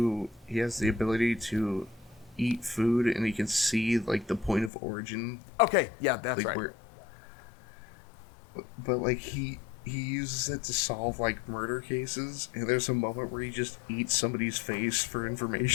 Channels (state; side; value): drops out; right; at 4.7 s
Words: he has the ability to eat food, and he can see, like, the point of origin. Okay, yeah, that's like, right. But, like, he uses it to solve, like, murder cases, and there's a moment where he just eats somebody's face for